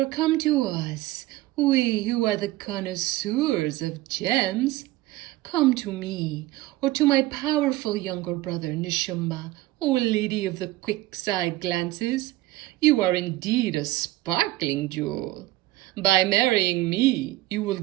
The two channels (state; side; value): quieter; left; 17.3 dB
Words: come to us, we who are the connoisseurs of gems. Come to me, or to my powerful younger brother Nishumba, O lady of the quick-side glances. You are indeed a sparkling jewel. By marrying me, you will